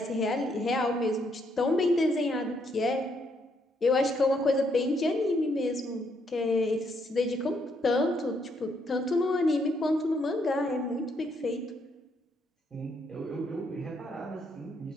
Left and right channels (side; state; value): both; normal; correlation 0.73